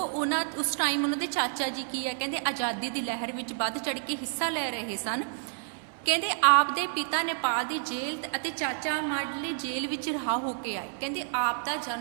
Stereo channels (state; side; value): silent; left; 58 dB below the other